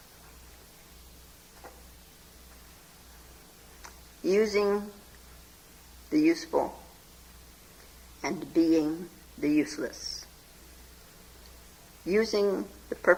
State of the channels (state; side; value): identical; both; correlation 1.00